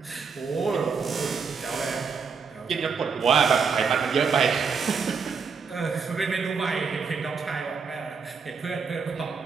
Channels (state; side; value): quieter; left; 5.5 dB